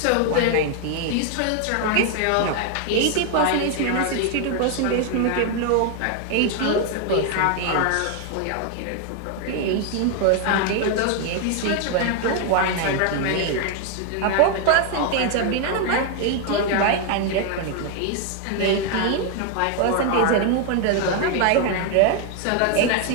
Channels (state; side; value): different; both; correlation 0.01